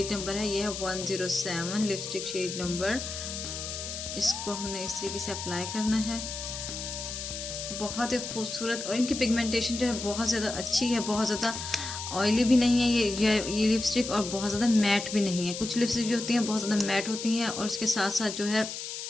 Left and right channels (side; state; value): left; noise; hiss, 7 dB below the sound